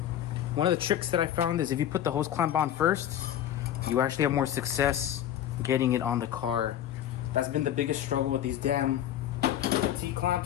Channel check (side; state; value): right; quieter; 11.1 dB